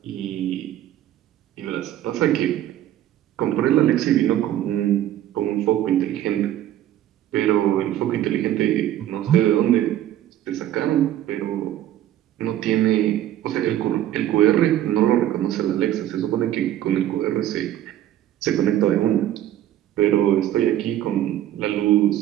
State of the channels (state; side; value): quieter; left; 12.3 dB